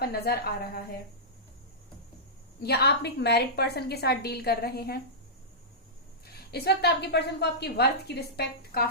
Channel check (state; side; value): normal; both; correlation -0.15